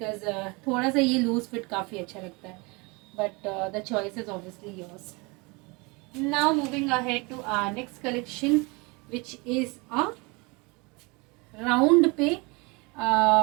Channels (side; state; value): left; quieter; 27.6 dB